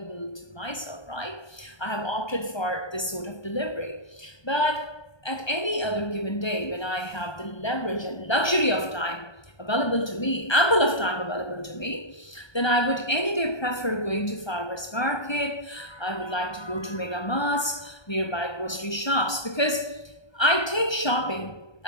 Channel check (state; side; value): late; right; 1.3 ms